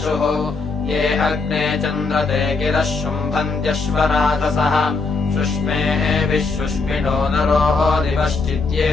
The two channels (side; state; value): right; quieter; 4.1 dB